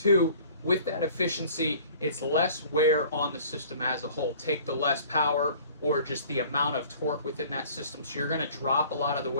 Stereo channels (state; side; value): inverted; both; correlation -0.49